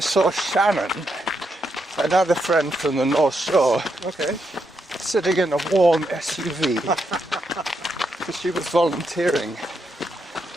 saw Shannon, another friend from the North Shore, Okay. sitting in a warm SUV, because she was volunteering.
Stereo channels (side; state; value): both; normal; correlation 0.81